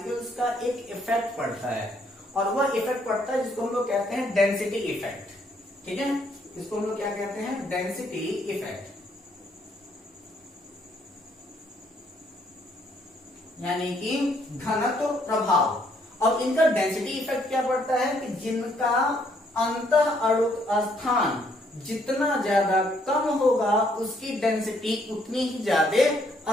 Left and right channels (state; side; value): normal; both; correlation 0.69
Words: का एक इफेक्ट पड़ता है, और वह इफेक्ट पड़ता है जिसको हम लोग कहते हैं डेंसिटी इफेक्ट, ठीक है। इसको हम लोग क्या कहते हैं, डेंसिटी इफेक्ट, यानी कि घनत्व प्रभाव। अब इनका डेंसिटी इफेक्ट क्या पड़ता है कि जिनका अंतः अणुक स्थान जितना ज्यादा कम होगा उसकी डेंसिटी उतनी ही ज्यादा